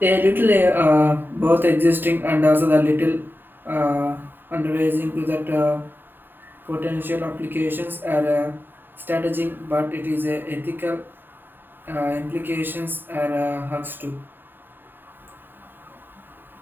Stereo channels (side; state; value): left; late; 0.094 ms